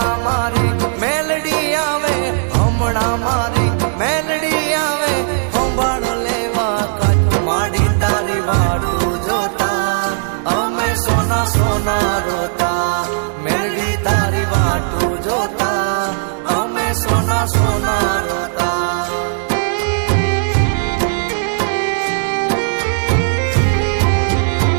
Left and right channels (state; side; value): silent; left; 59 dB below the other